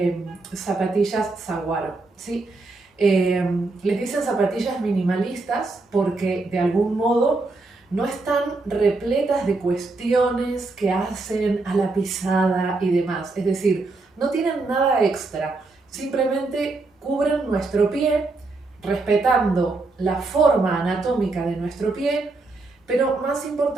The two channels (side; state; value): left; quieter; 3.4 dB